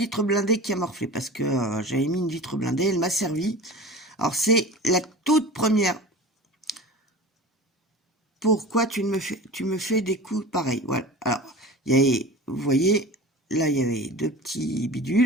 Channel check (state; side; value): normal; both; correlation 0.36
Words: blindée qui a morflé, parce que j'avais mis une vitre blindée, elle m'a servi. Alors c'est la toute première. Pourquoi tu me fais des coups pareils? Voilà. Alors, vous voyez, là, il y avait 2 petits